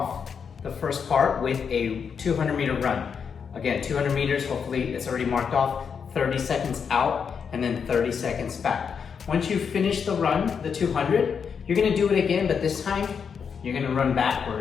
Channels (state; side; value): quieter; right; 6.6 dB